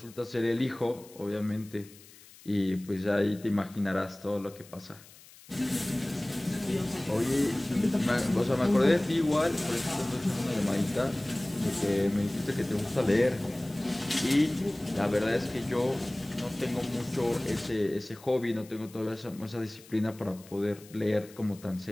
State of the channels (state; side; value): noise; left; hiss, 22 dB below the sound